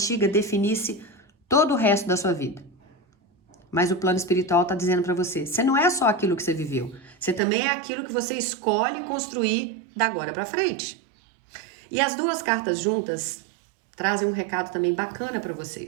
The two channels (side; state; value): left; drops out; at 7.4 s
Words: definisse todo o resto da sua vida. Mas o plano espiritual está dizendo para você, você não é só aquilo que você viveu. Você também é aquilo que você escolhe construir da agora para frente. E as duas cartas juntas trazem um recado também bacana para